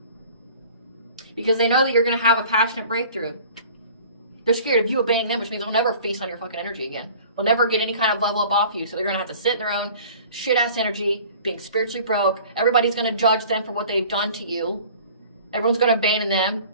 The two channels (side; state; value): both; inverted; correlation -0.47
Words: because they know that you're going to have a passionate breakthrough. They're scared of you abandoning them, which means they'll never feast on your fucking energy again. They'll never get any kind of level up off you. So they're going to have to sit in their own shit-ass energy, being spiritually broke. Everybody's going to judge them for what they've done to you. Everyone's going to abandon them.